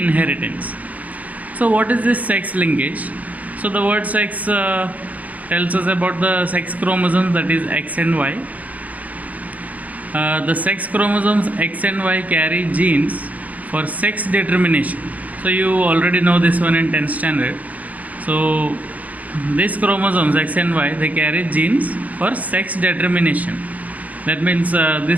So what is this sex linkage? So the word sex tells us about the sex chromosomes, that is X and Y. The sex chromosomes X and Y carry genes for sex determination. So you already know this one in 10th standard. So these chromosomes X and Y, they carry genes for sex determination. That means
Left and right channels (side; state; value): left; late; 0.075 ms